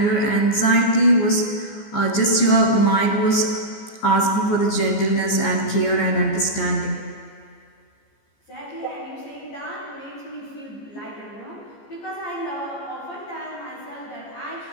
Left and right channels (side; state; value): right; late; 14 ms